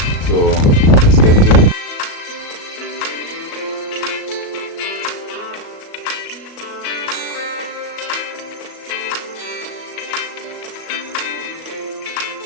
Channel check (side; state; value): right; late; 37 ms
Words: so let's get to it.